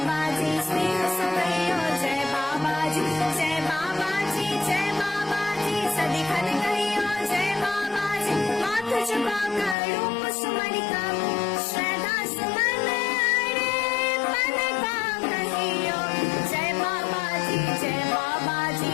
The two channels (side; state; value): right; drops out; at 9.8 s